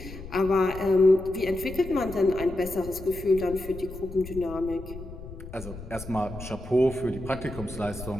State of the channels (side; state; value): left; noise; rumble, 12 dB below the sound